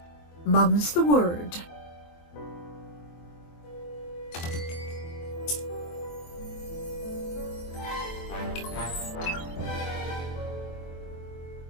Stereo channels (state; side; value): late; right; 23 ms